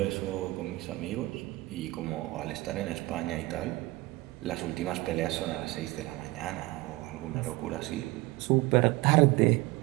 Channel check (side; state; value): left; quieter; 20.9 dB